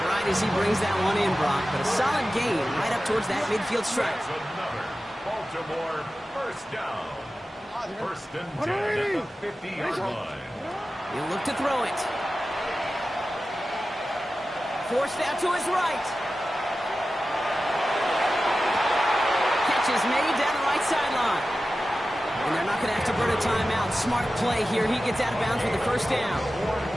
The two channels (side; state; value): both; normal; correlation 0.94